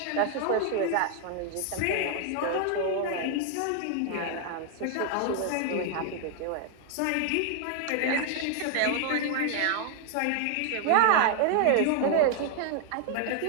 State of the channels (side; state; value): both; different; correlation 0.00